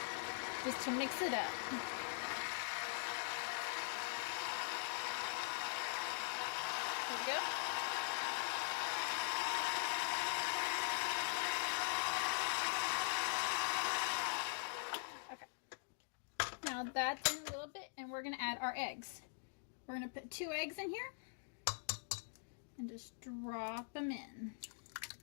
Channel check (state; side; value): silent; right; digital silence